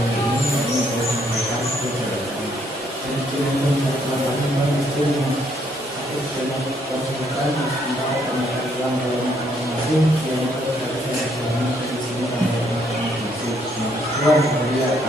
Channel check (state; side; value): normal; both; correlation 0.70